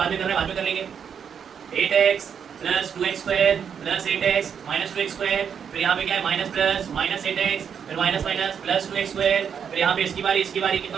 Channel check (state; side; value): quieter; left; 7.4 dB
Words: में करना है, बाद में कर लेंगे, 8x plus 2x square plus 8x minus 2x square, फिर यहाँ पे क्या है माइनस प्लस माइनस 8x, फिर minus minus plus 2x square, फिर यहाँ पे इसकी बारी कितना